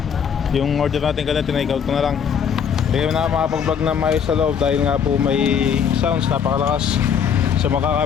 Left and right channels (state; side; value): quieter; right; 7.5 dB